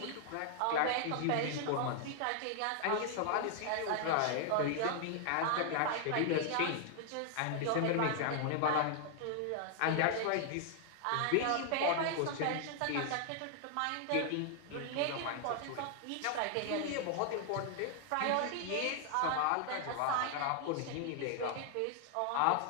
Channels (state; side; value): different; both; correlation 0.00